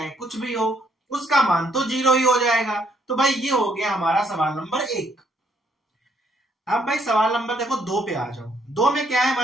कुछ भी हो उसका मान तो जीरो ही हो जाएगा। तो भाई ये हो गया हमारा सवाल नंबर 1। अब भाई सवाल नंबर देखो 2 पे आ जाओ। 2 में क्या है,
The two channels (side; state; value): both; normal; correlation 0.69